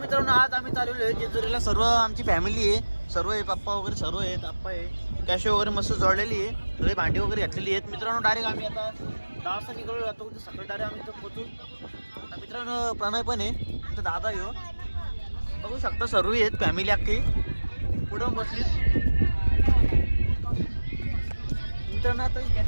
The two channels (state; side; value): inverted; both; correlation -1.00